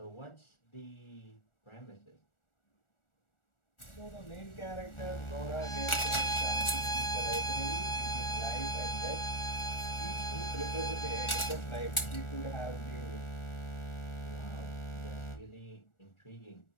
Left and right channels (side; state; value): right; late; 1.4 ms